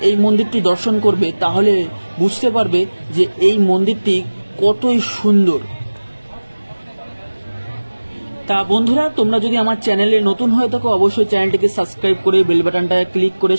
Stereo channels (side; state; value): both; inverted; correlation -1.00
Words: এই মন্দিরটি দর্শন করবে, তাহলে বুঝতে পারবে যে এই মন্দিরটি কতই সুন্দর। তা বন্ধুরা, তোমরা যদি আমার চ্যানেলে নতুন হয়ে থাকো, অবশ্যই চ্যানেলটিকে সাবস্ক্রাইব করে বেল বাটনটায় ক্লিক করে